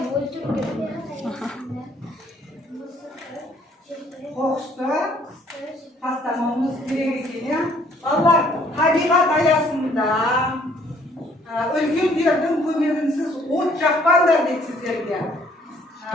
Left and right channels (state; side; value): normal; both; correlation 0.62